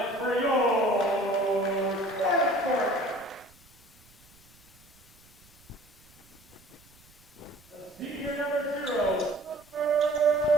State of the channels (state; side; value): noise; right; rumble, 27 dB below the sound